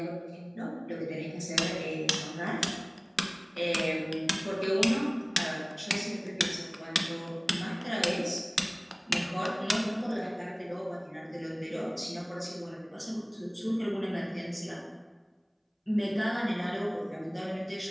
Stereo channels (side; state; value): both; identical; correlation 1.00